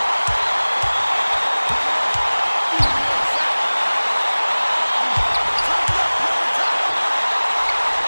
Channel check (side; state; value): both; inverted; correlation -1.00